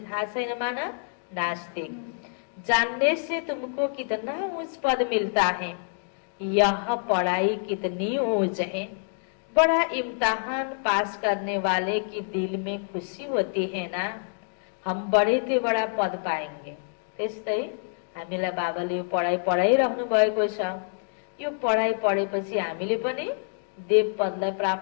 थाहा छैन माना नास्तिक। जानने से तुमको कितना ऊंच पद मिलता है। यह पढ़ाई कितनी ऊंच है। बड़ा इम्तिहान पास करने वाले की दिल में खुशी होती है ना, हम बड़े ते बड़ा पद पाएंगे। त्यस्तै हामीलाई बाबाले यो पढाइ पढाइरहनु भएको छ। यो पढाइ पढेपछि हामीले पनि देव पदलाई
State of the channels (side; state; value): right; silent; 60 dB below the other